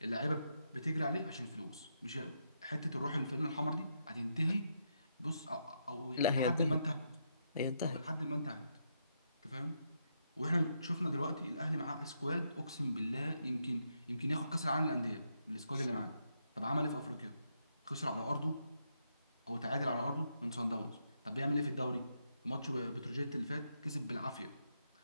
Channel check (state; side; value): inverted; both; correlation -0.80